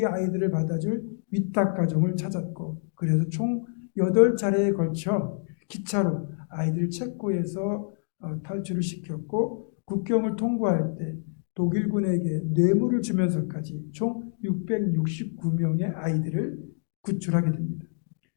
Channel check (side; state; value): right; silent; digital silence